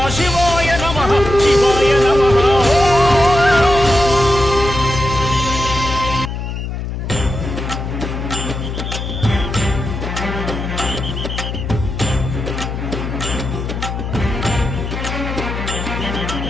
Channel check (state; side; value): noise; left; hum, 5 dB below the sound